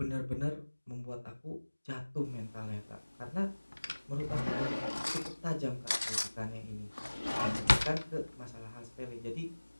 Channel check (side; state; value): both; inverted; correlation -1.00